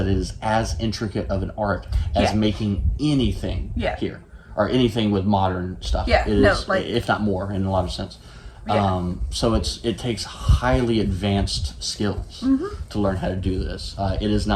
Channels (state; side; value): identical; both; correlation 1.00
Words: it is as intricate of an art as making anything here, or anything with modern stuff. It is, if not more, in a lot of sense. So it takes highly advanced skills to learn how to do this. It is